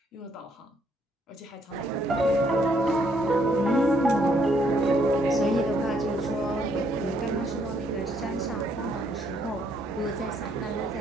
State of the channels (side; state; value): both; normal; correlation 0.69